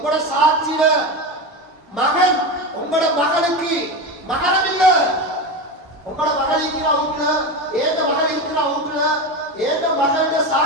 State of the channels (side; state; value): both; normal; correlation 0.20